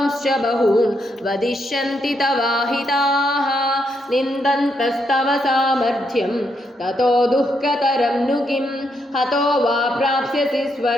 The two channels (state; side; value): normal; both; correlation 0.78